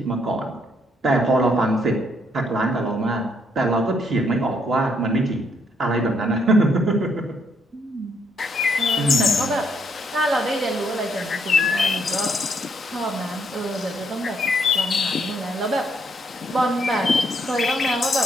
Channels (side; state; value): both; normal; correlation 0.72